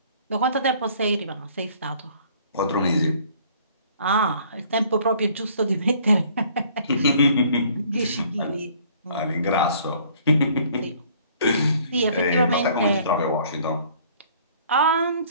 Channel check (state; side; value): inverted; both; correlation -0.57